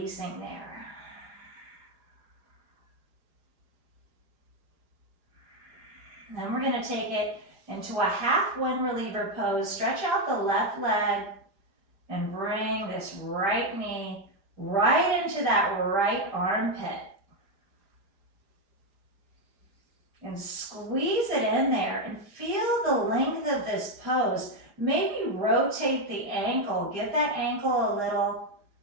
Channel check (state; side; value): late; left; 5.0 ms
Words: there. And then we're going to take it into a half wind reliever pose. Stretch out the left leg and bring this right knee right into that right armpit. And squeeze it in there and feel the length of this pose. Maybe rotate the ankle. Give that ankle a little